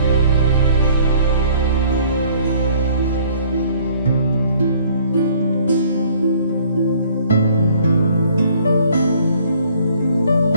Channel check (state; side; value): inverted; both; correlation -0.58